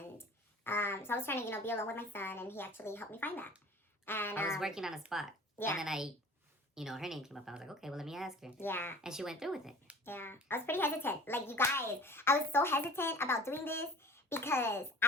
so I was trying to be alone with my son, and he actually helped me find that. And I was working on a spot, yeah. and then her name came up. I was like, okay, well, let me ask her. Yeah. And she went through with it. Yeah. I was pretty hesitant. Like, you guys, I was so hesitant about doing this because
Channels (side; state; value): both; normal; correlation 0.44